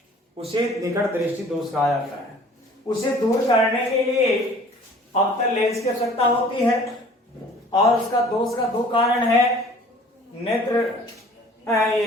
उसे निकट दृष्टि दोष कहा जाता है। उसे दूर करने के लिए अवतल लेंस की आवश्यकता होती है, और उसका दोष का 2 कारण है।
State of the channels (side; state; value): both; normal; correlation 0.50